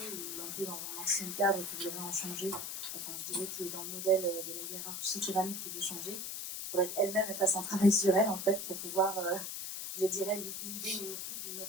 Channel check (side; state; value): left; noise; hiss, 5 dB below the sound